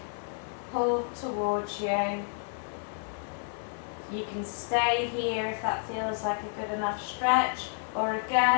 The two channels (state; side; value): silent; right; digital silence